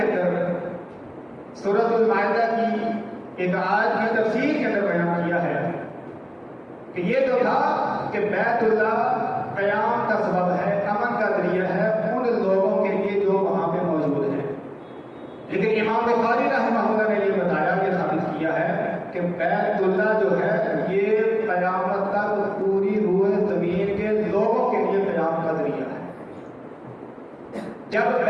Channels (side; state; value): both; identical; correlation 1.00